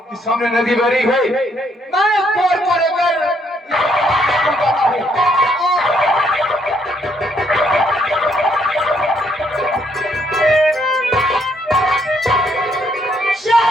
कि सामने नदी बह रही है। मैं कोर पर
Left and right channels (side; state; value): both; normal; correlation 0.71